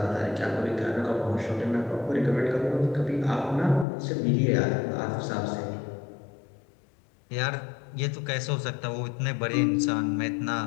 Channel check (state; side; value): drops out; right; at 3.9 s